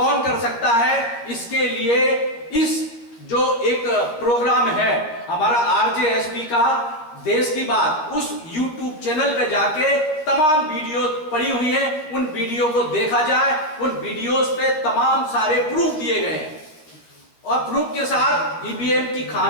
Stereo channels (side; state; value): right; late; 13 ms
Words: कर सकता है? इसके लिए इस जो एक प्रोग्राम है हमारा आरजेएसपी का देश की बात, उस YouTube चैनल पे जाके तमाम वीडियो पड़ी हुई हैं, उन वीडियो को देखा जाए। उन वीडियोस पे तमाम सारे प्रूफ दिए गए हैं और प्रूफ के साथ ईवीएम की